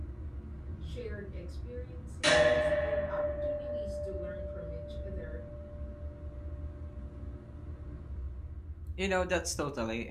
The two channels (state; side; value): identical; both; correlation 1.00